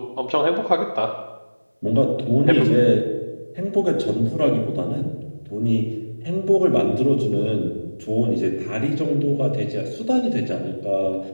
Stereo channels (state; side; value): inverted; both; correlation -1.00